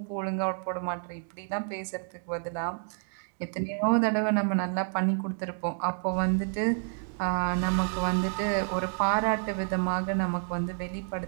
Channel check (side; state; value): left; silent; 58 dB below the other